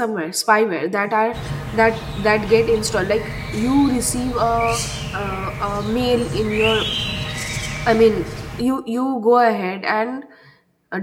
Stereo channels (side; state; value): both; identical; correlation 1.00